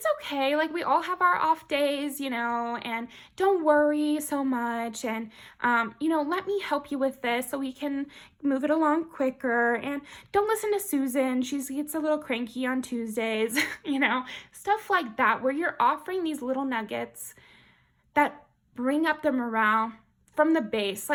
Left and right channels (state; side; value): identical; both; correlation 1.00